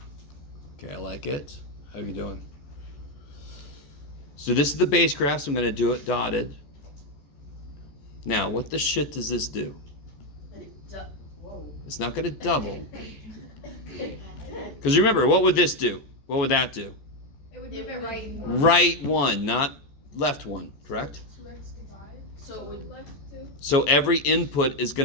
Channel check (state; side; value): late; right; 14 ms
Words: Okay, I like it. How you doing? So this is the base graph. So I'm going to do it dotted. Now, what the shit does this do? Whoa. It's not going to double. Because remember, what would this do? What would that do? It would move it right. Right 1, not left 1, correct? 2x divide. So it would left 2. So every input is